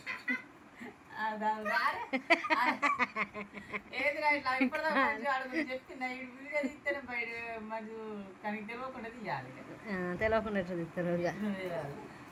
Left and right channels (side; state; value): both; identical; correlation 1.00